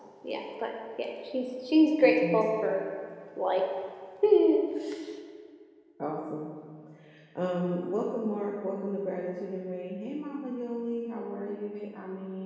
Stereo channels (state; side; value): identical; both; correlation 1.00